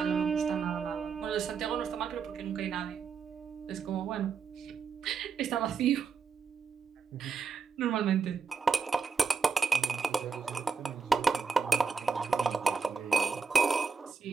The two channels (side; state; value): left; quieter; 5.4 dB